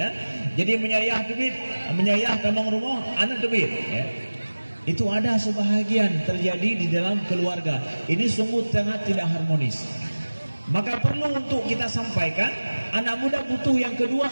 Jadi menyayah tamang rumah, anak itu bir, ya. Itu ada sebahagian terjadi di dalam keluarga. Ini sungguh sangat tidak harmonis. Maka perlu untuk kita sampaikan, anak muda butuh yang kedua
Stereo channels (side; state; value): both; inverted; correlation -1.00